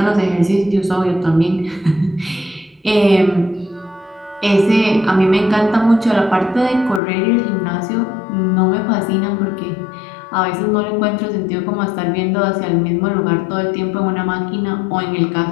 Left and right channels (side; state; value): right; drops out; at 7.0 s